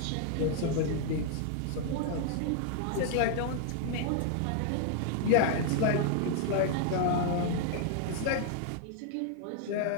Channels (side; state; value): both; different; correlation 0.00